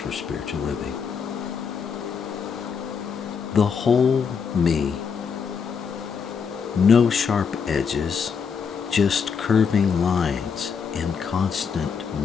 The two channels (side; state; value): right; quieter; 6.2 dB